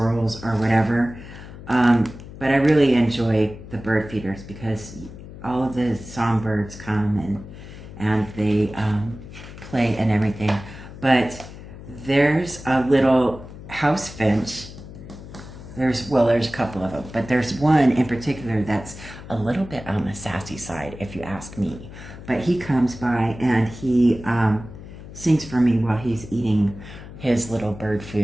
or whatever. But I really enjoy the bird feeders because all of the songbirds come and they play and everything. But there's a little house finch. There's a couple of them, but there's one in particular that's a little bit on the sassy side, if you ask me. But he comes by and he sings for me while he's eating his little bird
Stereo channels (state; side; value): noise; left; hum, 14 dB below the sound